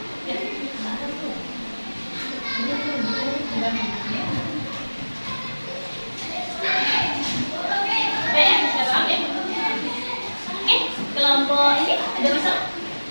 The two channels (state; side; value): inverted; both; correlation -1.00